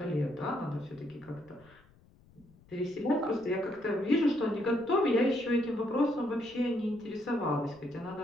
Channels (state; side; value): noise; left; rumble, 28 dB below the sound